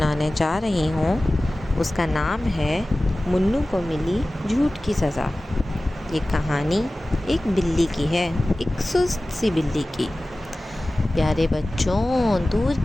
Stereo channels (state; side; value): normal; both; correlation 0.97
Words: جا رہی ہوں اس کا نام ہے منو کو ملی جھوٹ کی سزا۔ یہ کہانی ایک بلی کی ہے، ایک سست سی بلی کی۔ پیارے بچوں، دور